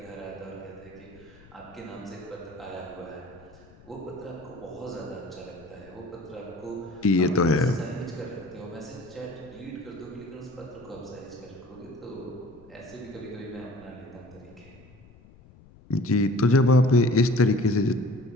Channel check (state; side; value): noise; left; rumble, 24 dB below the sound